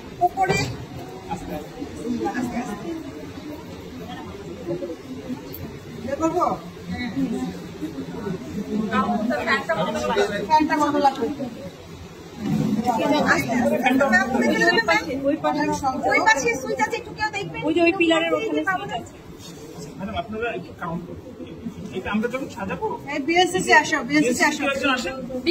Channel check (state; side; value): identical; both; correlation 1.00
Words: উপরে করবো ওই পিলারের ওখানে আপনারা একটু কাউন্ট করুন। আমরা যখন সাজাবো বিএসসি আসো, বিএসসি আসো,